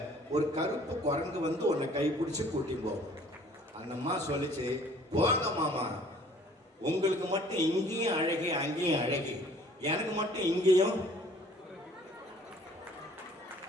ஒரு கருப்பு குரங்கு வந்து உன்னை கை பிடிச்சி கூட்டி போவோம். அந்த அம்மா சொல்லிச்சு, போங்க மாமா, உங்களுக்கு மட்டும் இங்கேயும் அழகி அங்கேயும் அழகி, எனக்கு மட்டும் இங்கேயும்.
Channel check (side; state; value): both; normal; correlation 0.54